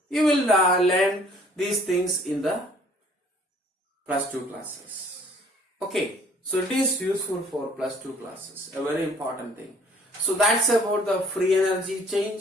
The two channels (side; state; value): both; normal; correlation 0.56